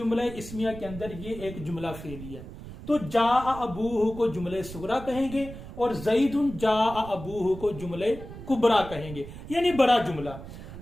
इस्मिया के अंदर ये एक जुमला फेली है। तो जा अबूहु को जुमले सुगरा कहेंगे और ज़ैदुन जा अबूहु को जुमले कुबरा कहेंगे, यानी बड़ा जुमला।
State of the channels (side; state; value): right; noise; rumble, 13 dB below the sound